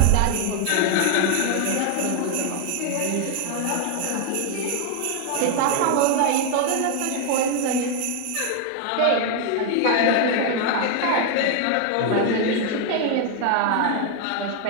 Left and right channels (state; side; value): different; both; correlation 0.00